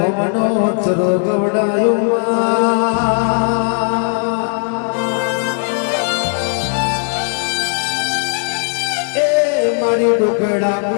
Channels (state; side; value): silent; right; 56 dB below the other